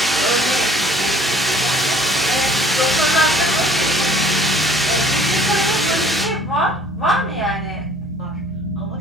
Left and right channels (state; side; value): normal; both; correlation 0.54